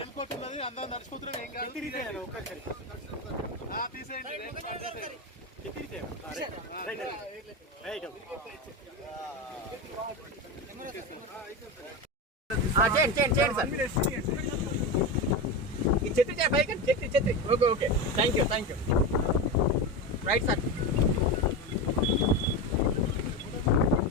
కోట్ ఉన్నది, అందరూ నడిచిపోతున్నాం. ఏం కాదు, చెత్తిరిగితే ఒక్కసారి తీసేయండి. చెత్తిరిగితే రైట్ చేయండి సార్. ఈ చెత్తి పైకి చెత్తి. Okay thank you right sir.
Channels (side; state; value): both; normal; correlation 0.19